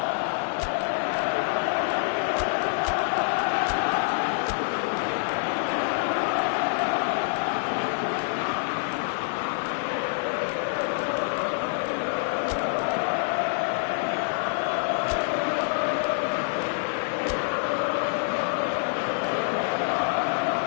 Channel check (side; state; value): right; silent; 61 dB below the other